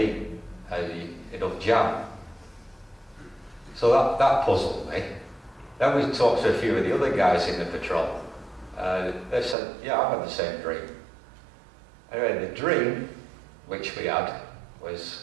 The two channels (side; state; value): left; drops out; at 9.6 s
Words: and it'll jam. So that puzzled me. Then we talked to a few of the other guys in the patrol. They said, yeah, I've had the same dream. Anyway, the dream, which we had,